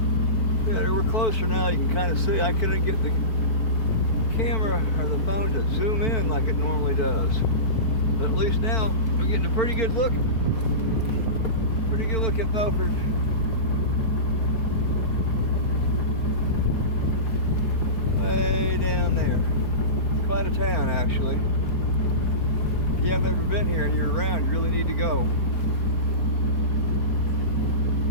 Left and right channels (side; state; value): right; late; 4.5 ms